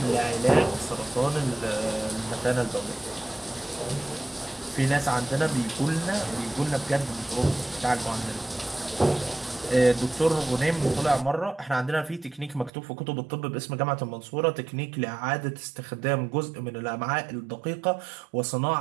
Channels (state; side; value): drops out; left; at 12.7 s